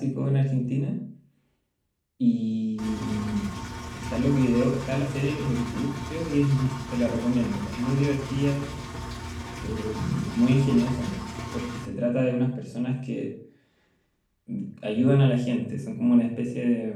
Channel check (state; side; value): identical; both; correlation 1.00